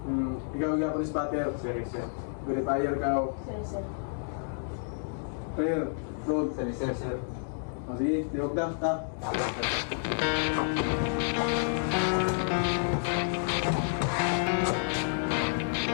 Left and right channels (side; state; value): right; silent; digital silence